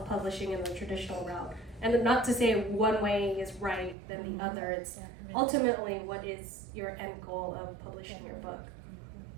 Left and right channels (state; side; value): drops out; left; at 4.0 s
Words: and the traditional route. And not to say one way is right than the other. It's ultimately what is your end goal of publishing your book.